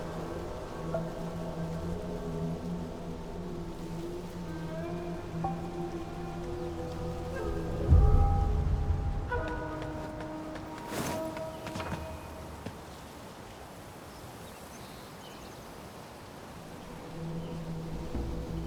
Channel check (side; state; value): both; identical; correlation 1.00